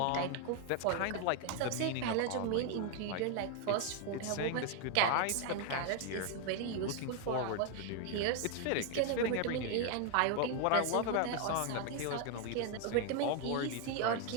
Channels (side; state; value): both; different; correlation 0.01